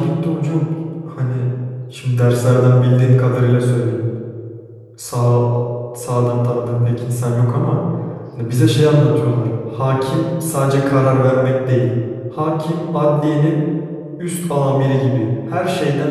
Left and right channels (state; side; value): identical; both; correlation 1.00